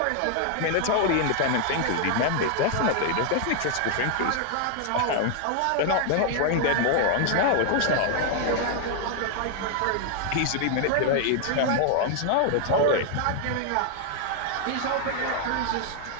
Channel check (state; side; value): different; both; correlation 0.00